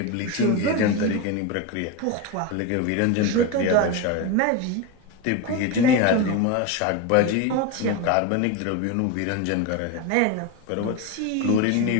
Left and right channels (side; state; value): both; different; correlation 0.04